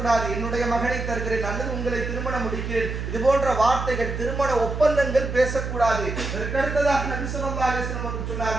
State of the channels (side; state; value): right; noise; hum, 4 dB below the sound